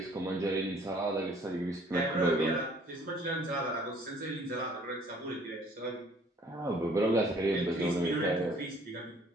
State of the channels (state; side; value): normal; both; correlation 0.57